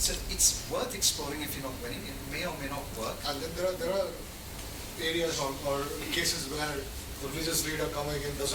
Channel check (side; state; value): both; identical; correlation 1.00